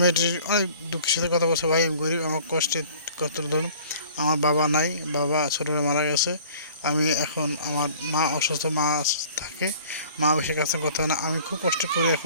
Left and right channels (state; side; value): inverted; both; correlation -0.50